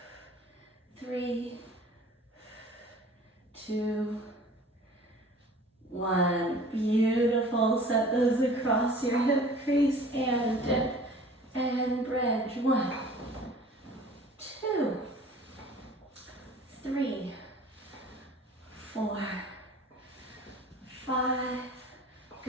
3, 2, 1. Beautiful. Set those across your hip crease and dip and bridge. 1, 2, 3, 4, 5.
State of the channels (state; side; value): normal; both; correlation 0.46